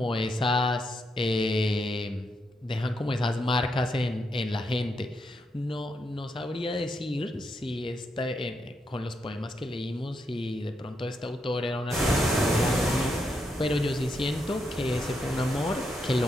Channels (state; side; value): normal; both; correlation 0.81